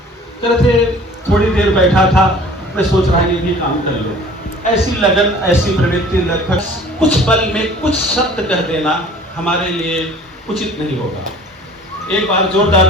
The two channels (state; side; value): normal; both; correlation 0.48